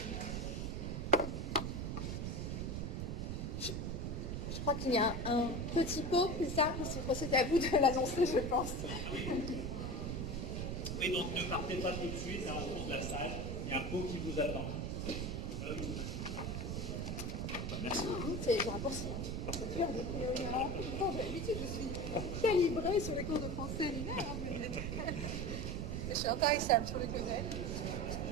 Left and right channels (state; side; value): noise; right; rumble, 2 dB below the sound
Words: Je crois qu'il y a un petit pot, c'est ça? C'est à vous de l'annoncer, je pense. Oui, donc ne partez pas tout de suite, hein, au fond de la salle, il y a un pot qui vous attend. Merci beaucoup. c'est un raccourci. C'est dur de priori. Alors, pourtant, d'habitude, je suis calibrée sur les cours de français linéaire, mais je suis intarissable sur les codels.